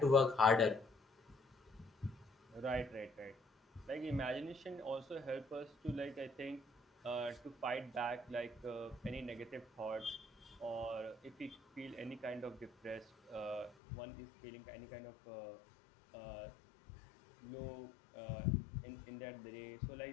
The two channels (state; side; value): drops out; right; at 13.8 s